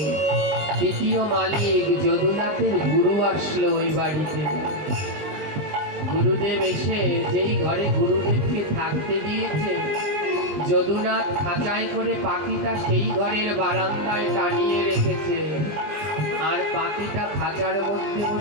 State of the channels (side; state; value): left; late; 20 ms